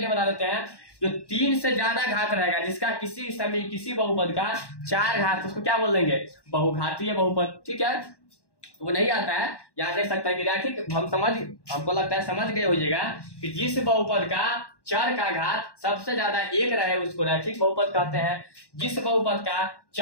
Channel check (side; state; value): right; late; 1.1 ms